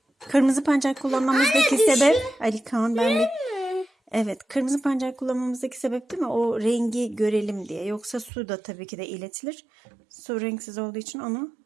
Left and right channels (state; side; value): drops out; left; at 8.3 s